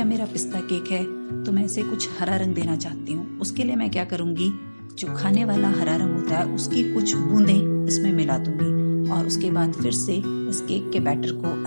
मेरा पिस्ता केक है तो मैं इसे कुछ हरा रंग देना चाहती हूँ। उसके लिए मैं क्या करूँगी, जो खाने वाला हरा रंग होता है उसकी कुछ बूंदें इसमें मिला दूंगी और उसके बाद फिर से इस केक के बैटर को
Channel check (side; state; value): both; inverted; correlation -1.00